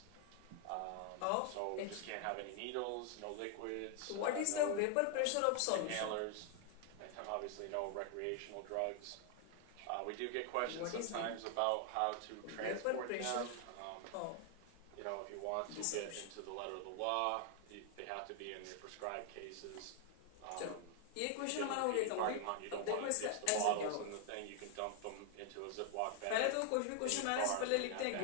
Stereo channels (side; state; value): both; different; correlation 0.00